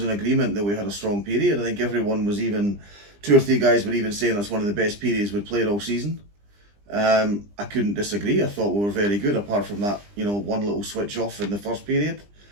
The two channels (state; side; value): late; left; 20 ms